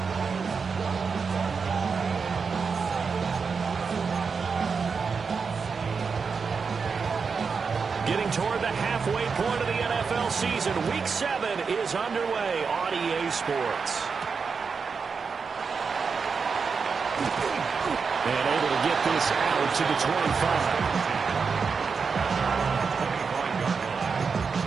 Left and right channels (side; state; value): left; quieter; 5.4 dB